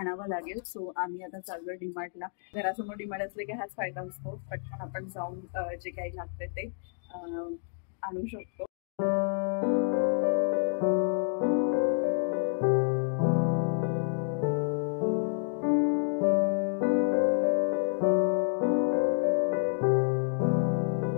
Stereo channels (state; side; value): silent; right; digital silence